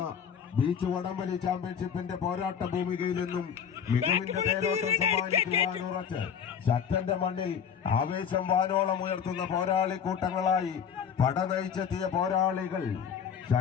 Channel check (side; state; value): right; quieter; 7.7 dB